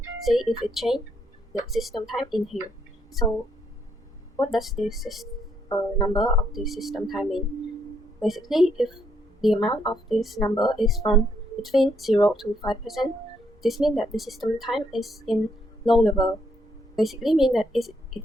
see if it changed the system time in here. So what does this number of the system time mean? Basically, if the amount of this number is from between 0 to 5%, this means that the system time is in low level. Basically means that it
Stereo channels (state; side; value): normal; both; correlation 0.73